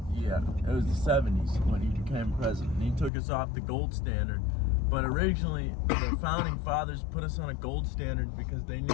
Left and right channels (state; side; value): drops out; right; at 3.1 s